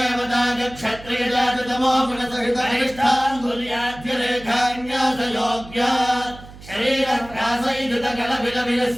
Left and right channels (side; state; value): right; noise; hum, 18 dB below the sound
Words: क्षत्रियजात तमो गुण सहित अनिष्ठाङ्गुल्याद्य रेखान्यास योग्य शरीरप्रासैधृत